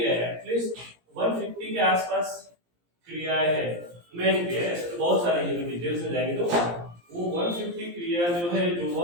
एटलीस्ट 150 के आसपास क्रियाएं है, मेन क्रिया। ऐसे तो बहुत सारी है, डिटेल्स में जाएंगे तो वो 150 क्रिया जो है, जो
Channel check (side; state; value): left; late; 17 ms